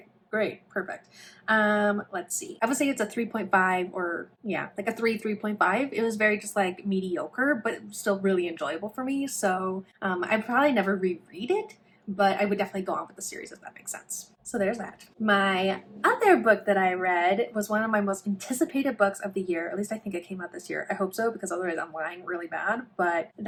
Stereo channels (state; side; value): identical; both; correlation 1.00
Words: great, perfect. Let's see. I would say it's a 3.5, or yeah, like a 3.5. It was very just like mediocre, but still really enjoyable for me. So I'd probably never reread it, but I would definitely go on with the series if that makes sense. So there's that. My other book that I read was one of my most anticipated books of the year. At least I think it came out this year. I hope so, because otherwise I'm lying really bad. But